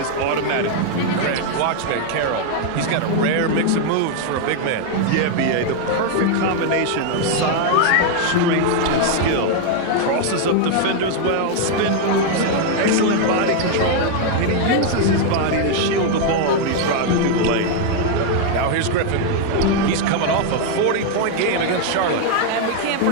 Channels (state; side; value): different; both; correlation 0.00